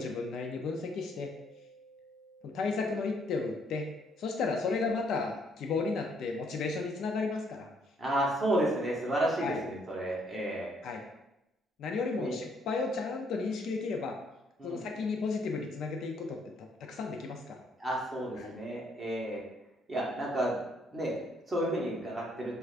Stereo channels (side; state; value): both; normal; correlation 0.68